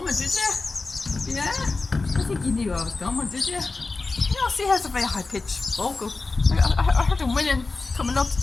did you? Yeah? I think you knew I was coming, did you? You know, see, has a very high-pitched vocal. I heard him winning coming up.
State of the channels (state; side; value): quieter; right; 3.7 dB